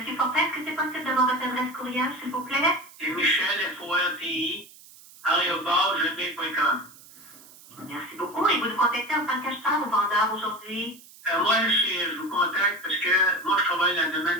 Fortin, est-ce que c'est possible d'avoir votre adresse courriel, s'il vous plaît? C'est Michel, FORTI, @gmail.com. Merci beaucoup. Et vous nous contactez en tant qu'acheteur ou vendeur aujourd'hui? Moi, je vous contacte parce que moi, je travaille dans le domaine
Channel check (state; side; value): noise; right; hiss, 21 dB below the sound